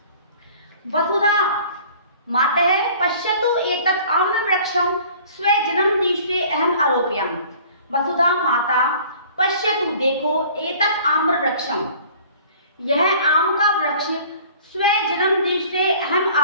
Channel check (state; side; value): inverted; both; correlation -0.49